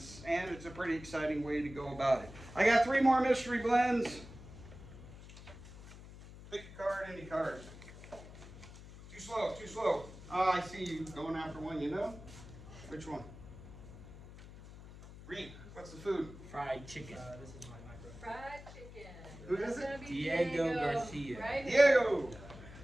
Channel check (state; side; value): noise; left; hum, 16 dB below the sound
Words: and it's a pretty exciting way to go about it. I got 3 more mystery blends. Pick a card, any card. Too slow, too slow. Oh, I see you going after one, you know? Which one? Reed, what's the food? Fried chicken. This is my micro. Fried chicken. Who is That's it? gonna be Diego Garcia. Right? Diego!